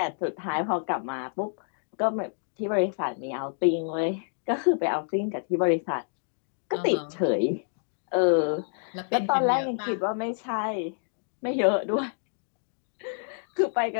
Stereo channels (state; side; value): silent; right; digital silence